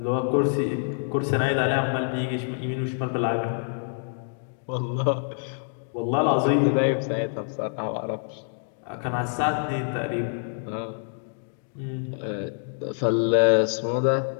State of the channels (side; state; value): right; silent; digital silence